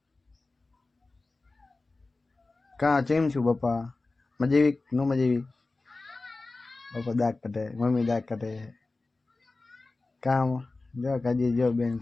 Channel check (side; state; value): right; quieter; 3.4 dB